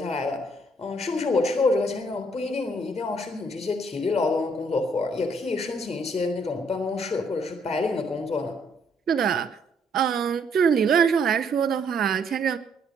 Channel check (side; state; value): both; normal; correlation 0.68